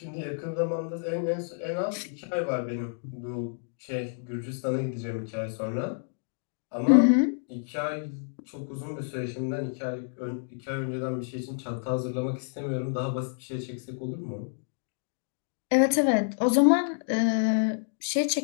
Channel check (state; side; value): silent; right; digital silence